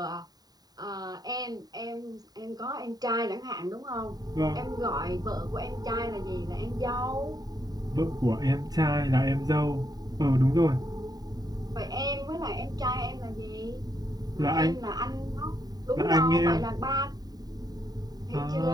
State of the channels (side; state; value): left; late; 0.19 ms